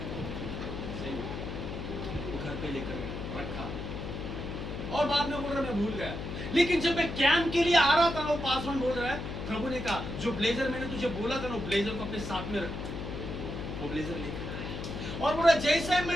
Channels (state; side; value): noise; left; hum, 6 dB below the sound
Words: वो घर पे लेकर रखा, और बाद में बोल रहा मैं भूल गया। लेकिन जब मैं कैंप के लिए आ रहा था, वो पासवान बोल रहा है प्रभु ने कहा जो ब्लेजर मैंने तुझे बोला था ना, वो ब्लेजर को अपने साथ में रख। वो ब्लेजर लेकर और बोला जैसे